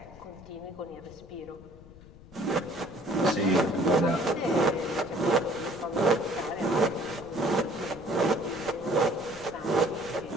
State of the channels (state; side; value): noise; left; rumble, 20 dB below the sound